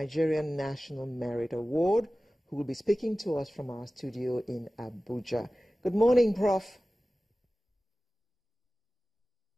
National Merit Award, who will be speaking to us from our studio in Abuja. Good morning, Prof.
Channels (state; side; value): normal; both; correlation 0.97